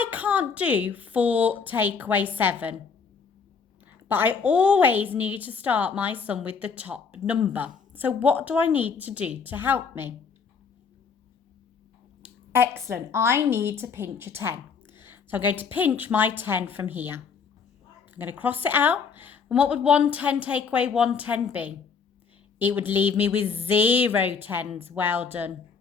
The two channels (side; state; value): right; quieter; 5.7 dB